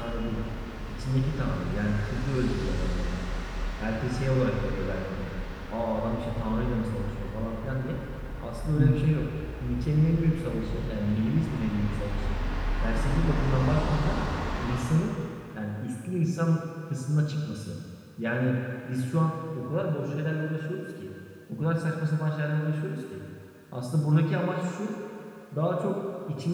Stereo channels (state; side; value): identical; both; correlation 1.00